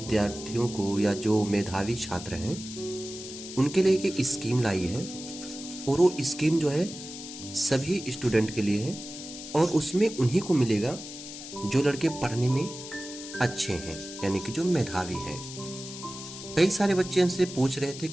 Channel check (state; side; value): noise; left; hiss, 12 dB below the sound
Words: को या जो मेधावी छात्र हैं उनके लिए एक स्कीम लाई है। और वो स्कीम जो है सभी स्टूडेंट के लिए है और उसमें उन्हीं को मिलेगा जो लड़के पढ़ने में अच्छे हैं, यानी कि जो मेधावी हैं। कई सारे बच्चे हमसे पूछ रहे थे